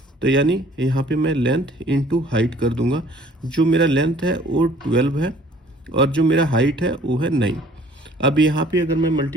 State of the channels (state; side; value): normal; both; correlation 0.55